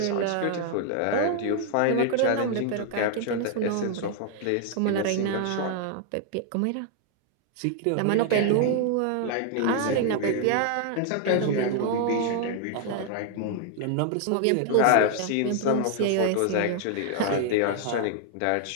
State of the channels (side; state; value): both; different; correlation 0.00